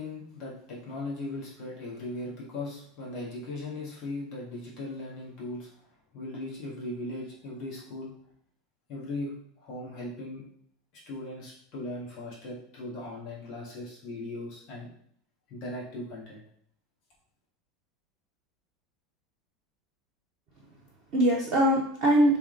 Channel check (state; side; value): normal; both; correlation 0.40